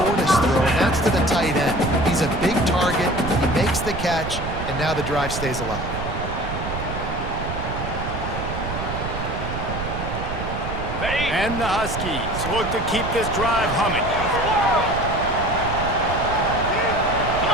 throw, and that's to the tight end. He's a big target. He makes the catch, and now the drive stays alive. And the Huskies look to keep this drive humming.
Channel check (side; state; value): right; noise; rumble, 6 dB below the sound